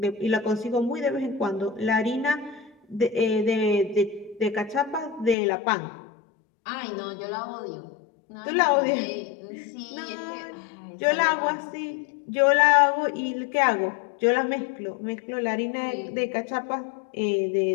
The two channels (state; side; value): drops out; right; at 5.4 s